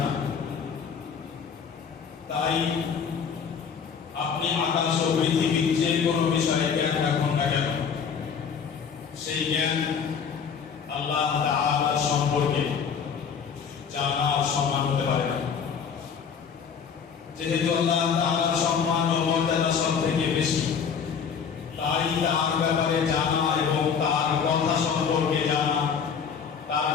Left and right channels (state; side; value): quieter; right; 6.7 dB